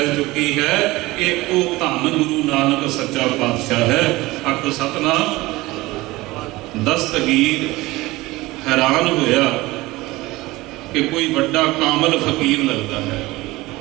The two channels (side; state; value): left; quieter; 19.9 dB